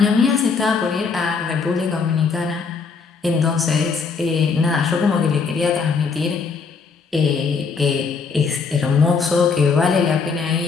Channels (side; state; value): right; quieter; 5.1 dB